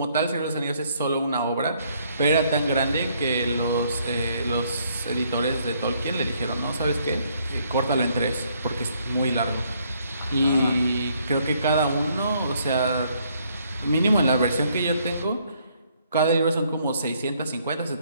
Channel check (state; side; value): inverted; both; correlation -0.68